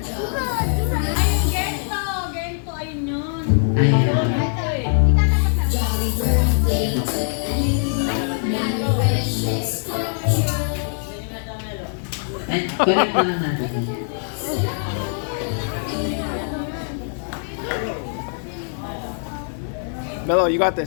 And correct na lang natin. Mello, you got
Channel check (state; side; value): silent; right; 64 dB below the other